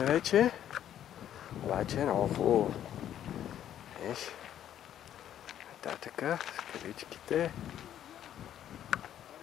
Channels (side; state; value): right; quieter; 10.8 dB